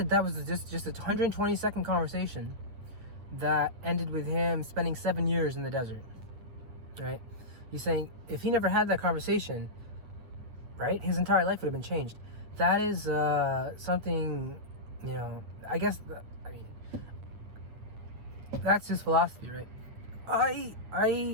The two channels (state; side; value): late; left; 9.3 ms